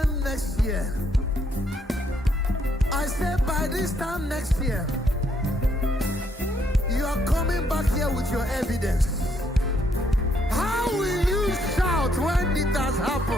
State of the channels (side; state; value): both; normal; correlation 0.72